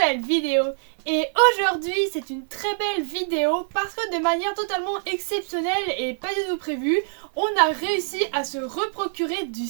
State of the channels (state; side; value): silent; left; 55 dB below the other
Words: vidéo. Et aujourd'hui c'est une très belle vidéo parce que de manière totalement exceptionnelle et pas du tout prévue, on a réussi à se reprocurer du